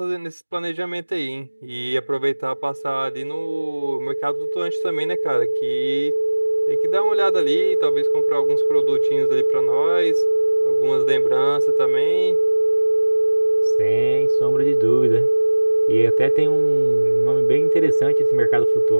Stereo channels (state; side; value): inverted; both; correlation -1.00